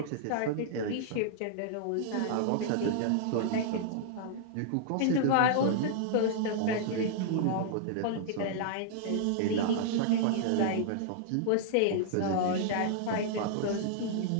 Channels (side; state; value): both; different; correlation -0.01